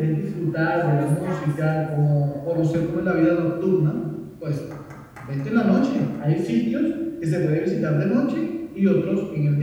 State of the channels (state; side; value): identical; both; correlation 1.00